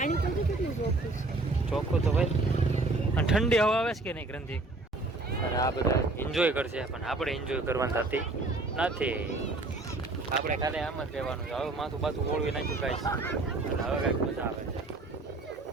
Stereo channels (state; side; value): quieter; left; 3.1 dB